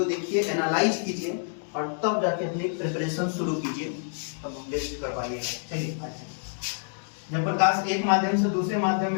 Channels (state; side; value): silent; right; digital silence